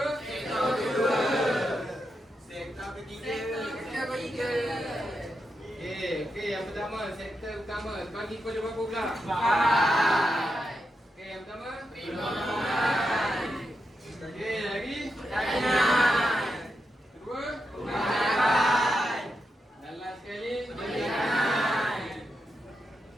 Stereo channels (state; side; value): normal; both; correlation 0.86